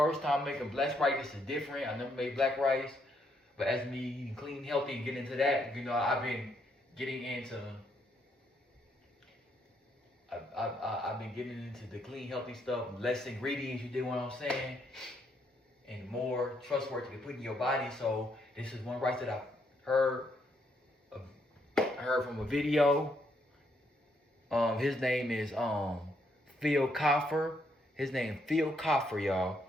time making black rice. This is different. I never made black rice. But as me eating clean, healthy, and getting into that, you know, I've been getting into I've been getting into the clean, healthy stuff, less ingredients, you dig what I'm saying? And more trustworthy to put in your body. So this is one rice that I heard from a video. His name is Phil Coffer. His name Phil Coffer, y'all.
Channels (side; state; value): both; normal; correlation 0.74